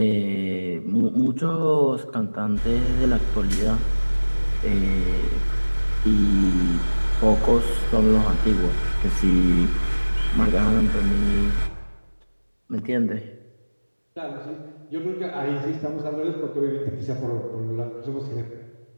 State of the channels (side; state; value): both; inverted; correlation -1.00